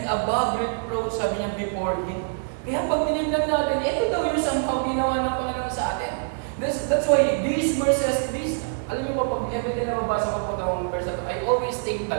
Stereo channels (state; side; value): silent; left; 62 dB below the other